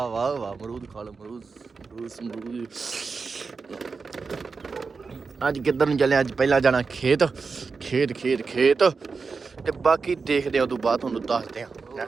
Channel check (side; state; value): left; quieter; 4.7 dB